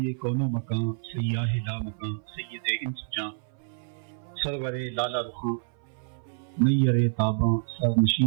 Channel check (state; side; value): silent; left; 58 dB below the other